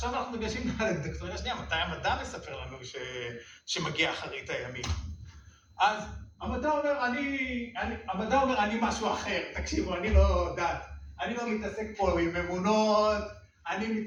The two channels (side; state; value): both; identical; correlation 1.00